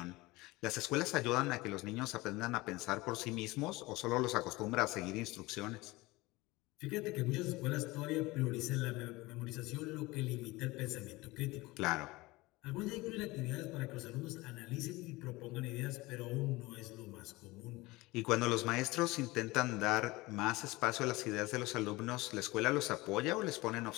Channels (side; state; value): right; quieter; 21.3 dB